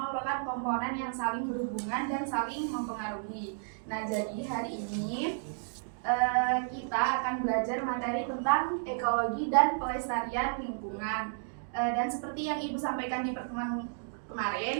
merupakan komponen yang saling berhubungan dan saling mempengaruhi. Nah, jadi hari ini kita akan belajar materi tentang ekologi dan pelestarian lingkungan. Dan seperti yang Ibu sampaikan di pertemuan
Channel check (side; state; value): left; silent; digital silence